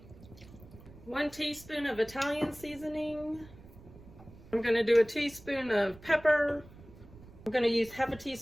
One teaspoon of Italian seasoning. I'm going to do a teaspoon of pepper. I'm going to use half a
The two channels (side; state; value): right; noise; rumble, 20 dB below the sound